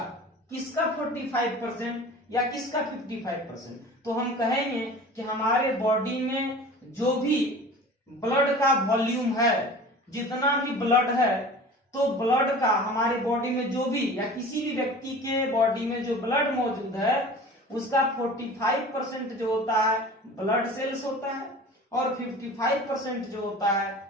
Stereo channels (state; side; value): normal; both; correlation 0.40